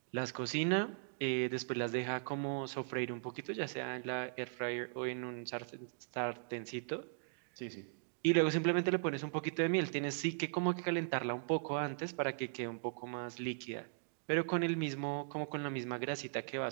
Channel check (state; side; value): silent; left; digital silence